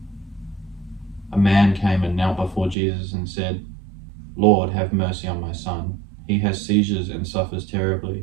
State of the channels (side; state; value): left; drops out; at 2.8 s